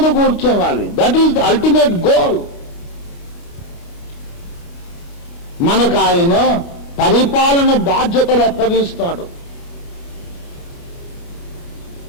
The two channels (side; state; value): right; late; 29 ms